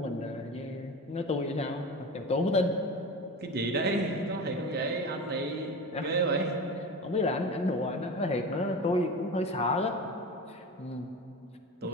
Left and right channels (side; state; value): both; normal; correlation 0.29